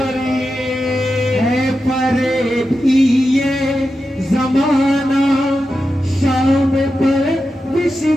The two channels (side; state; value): both; normal; correlation 0.90